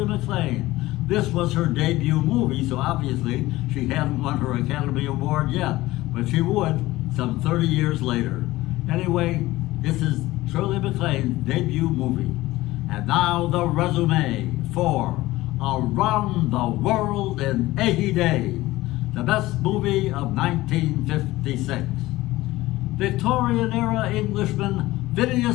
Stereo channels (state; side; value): quieter; right; 17.9 dB